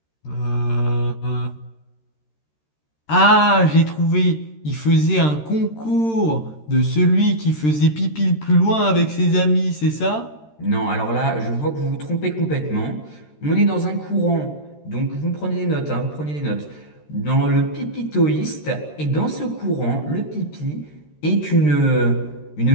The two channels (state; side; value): late; right; 13 ms